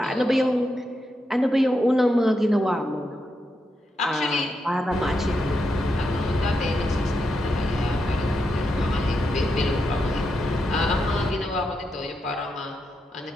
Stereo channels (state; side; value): normal; both; correlation 0.84